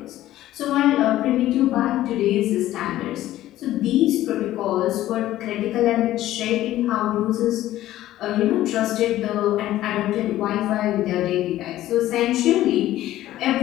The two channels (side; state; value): right; quieter; 14.3 dB